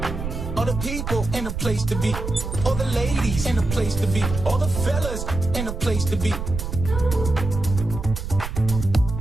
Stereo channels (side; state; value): right; noise; rumble, 5 dB below the sound